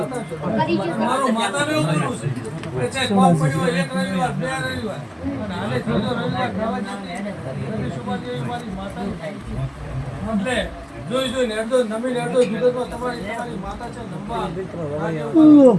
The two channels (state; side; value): identical; both; correlation 1.00